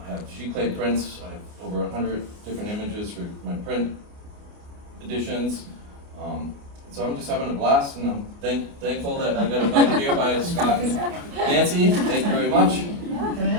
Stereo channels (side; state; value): left; late; 29 ms